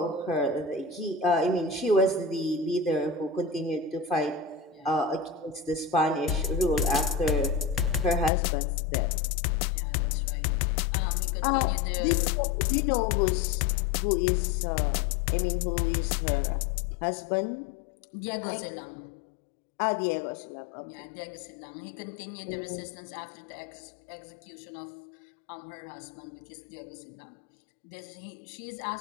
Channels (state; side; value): drops out; right; at 8.3 s